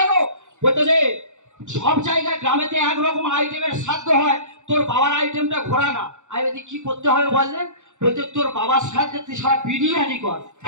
বলতেছে সব জায়গায় গ্রামেতে একরকম আইটেমের শ্রাদ্ধ হয়, তোর বাবার আইটেমটা ঘোরা না। আমি বলি কি করতে হবে বললেন? বলতে তোর বাবার শ্রাদ্ধে তুই সারা বিরিয়ানি কর।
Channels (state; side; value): late; left; 0.84 ms